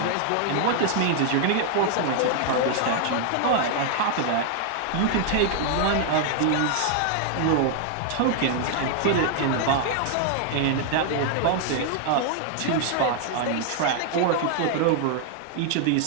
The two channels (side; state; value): both; different; correlation 0.00